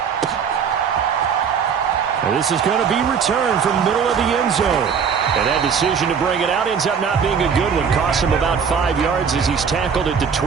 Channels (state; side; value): quieter; left; 6.7 dB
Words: And this is going to be returned from the middle of the end zone. And that decision to bring it out ends up not being a good one. Costs him about 5 yards as he's tackled at the